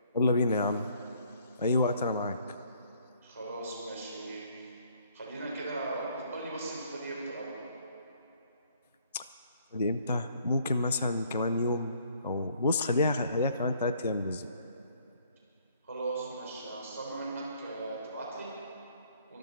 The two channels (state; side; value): inverted; both; correlation -0.63